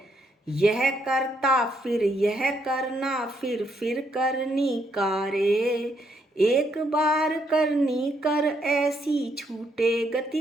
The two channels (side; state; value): both; normal; correlation 0.74